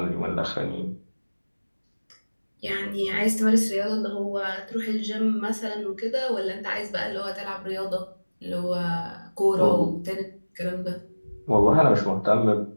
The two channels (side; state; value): both; inverted; correlation -1.00